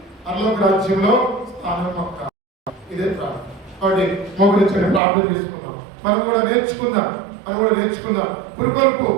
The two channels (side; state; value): left; drops out; at 5.0 s